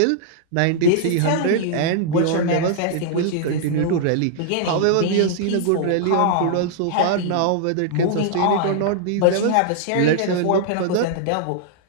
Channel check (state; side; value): different; both; correlation -0.01